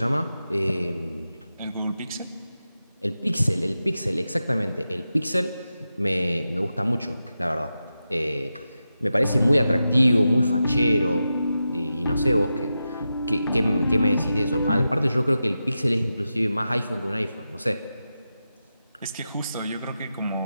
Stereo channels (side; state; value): both; inverted; correlation -0.91